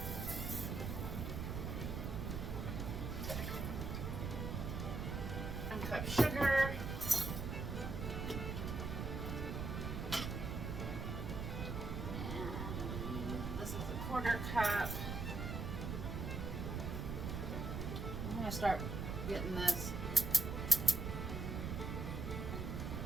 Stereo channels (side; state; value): right; noise; rumble, 3 dB below the sound